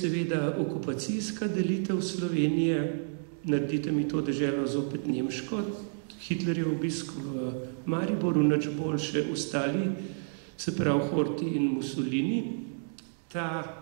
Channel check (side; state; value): left; silent; digital silence